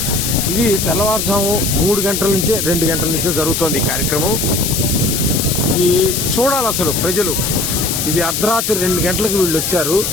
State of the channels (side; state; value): left; noise; hiss, 1 dB below the sound